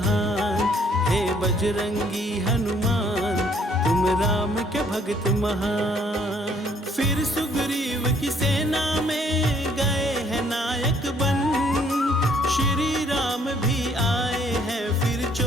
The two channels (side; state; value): both; normal; correlation 0.63